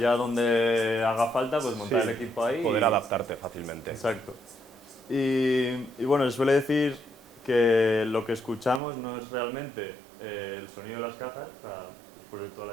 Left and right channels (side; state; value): left; drops out; at 8.8 s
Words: donde haga falta, pues montar el equipo ahí. Poder adaptarte fácilmente. Exacto. Y bueno, se suele decir que lo que escuchamos no es realmente el sonido de las cajas, o sea, después de toda